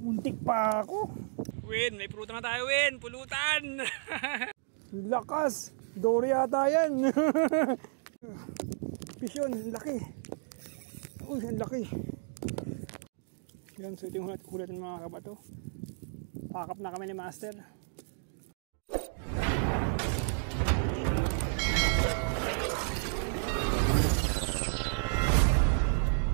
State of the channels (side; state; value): left; silent; digital silence